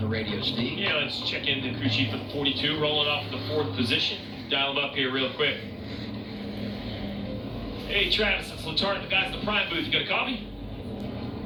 radio, Steve. Yeah, let's check in the crew chief at 42, rolling off the 4th position. Dial him up here real quick. Hey, Travis, it's Latarn, the guys in the prime booth. You got a coffee?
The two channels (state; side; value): identical; both; correlation 1.00